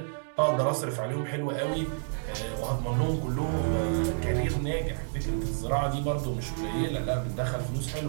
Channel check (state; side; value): silent; left; digital silence